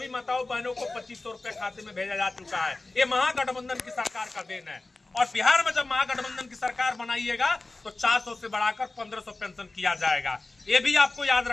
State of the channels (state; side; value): quieter; right; 3.2 dB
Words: माताओं बहनों को 2500 रुपया खाते में भेजा जा चुका है। ये महागठबंधन की सरकार का देन है। और बिहार में जब महागठबंधन की सरकार बनाइएगा तो 400 से बढ़ाकर 1500 पेंशन किया जाएगा, ये भी आपको याद